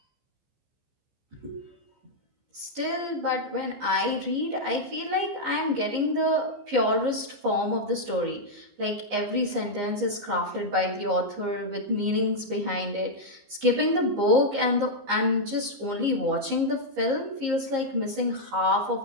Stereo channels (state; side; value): late; left; 15 ms